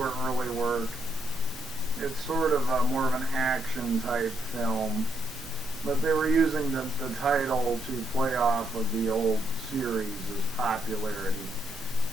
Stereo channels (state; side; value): normal; both; correlation 0.75